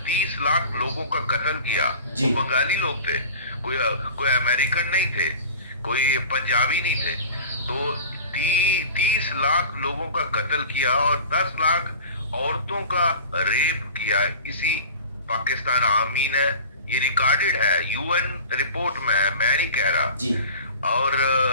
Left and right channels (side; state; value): both; inverted; correlation -0.39